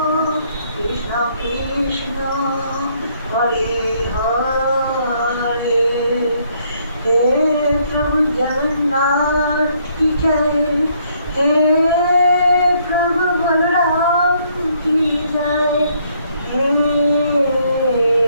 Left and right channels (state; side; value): inverted; both; correlation -0.68